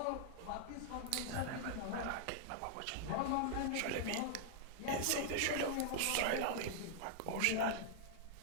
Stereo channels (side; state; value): both; different; correlation -0.01